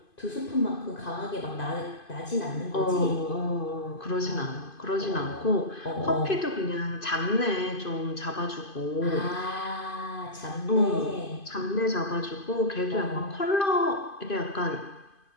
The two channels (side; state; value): right; late; 2.5 ms